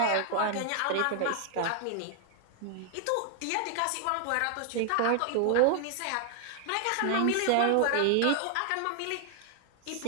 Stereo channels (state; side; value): different; both; correlation 0.00